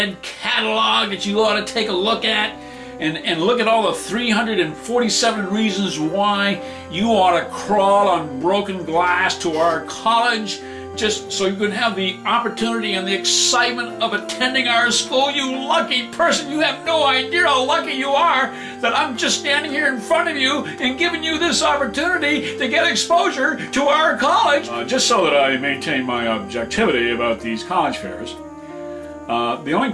catalog that you ought to take a look at, and look at all the 347 reasons why you ought to crawl on broken glass to our college just so you can have the opportunity and the excitement of attending our school. You lucky person, you have no idea how lucky you are that I'm just standing here in front of you and giving you this opportunity to get exposure to our college. Just so that I maintain my objectivity about these college fairs, the only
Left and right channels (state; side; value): identical; both; correlation 1.00